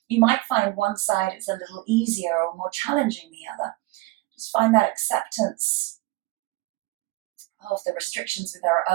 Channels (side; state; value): left; quieter; 21.0 dB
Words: You might find one side is a little easier or more challenging than the other. Just find that acceptance of the restrictions with our